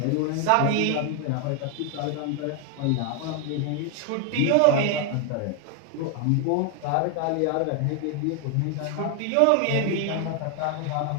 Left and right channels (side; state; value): both; different; correlation 0.01